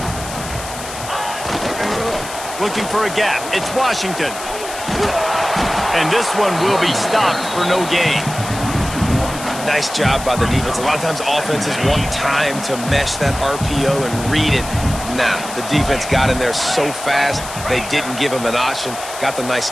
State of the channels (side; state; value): left; noise; hiss, 11 dB below the sound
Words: Looking for a gap. It's Washington. And this one will be stopped for no gain. Nice job by the defense. A lot of times offenses want time to mesh that RPO and read it. Nah, the defense got in there so fast, they didn't give him an option. Got the nice